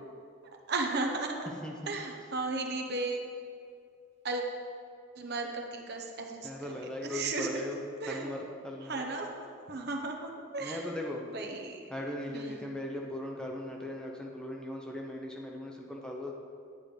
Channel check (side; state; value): both; normal; correlation 0.30